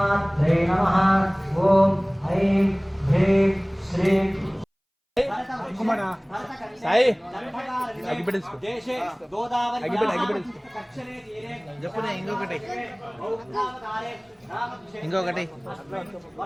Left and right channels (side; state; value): both; identical; correlation 1.00